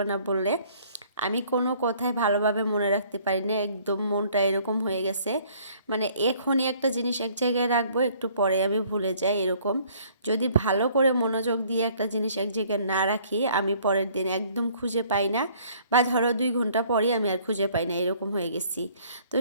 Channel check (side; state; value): both; inverted; correlation -0.59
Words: না বললে। আমি কোনো কথাই ভালোভাবে মনে রাখতে পারি না, একদম মনটা এরকম হয়ে গেছে। এখনই একটা জিনিস এক জায়গায় রাখবো, একটু পরে আমি ভুলে যাই এরকম। যদি ভালো করে মনোযোগ দিয়ে একটা জিনিস এক জায়গায় না রাখি, আমি পরের দিন একদম খুঁজে পাই না, বা ধরো 2 ঘন্টা পরই আমি আর খুঁজে পাই না, এরকম হয়ে গেছি। তো